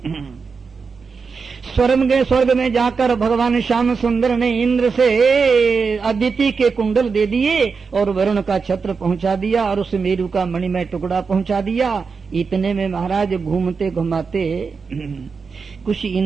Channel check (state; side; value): quieter; left; 5.2 dB